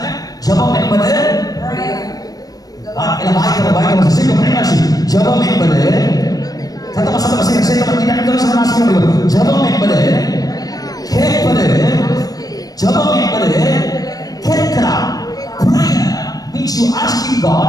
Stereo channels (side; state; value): right; late; 0.18 ms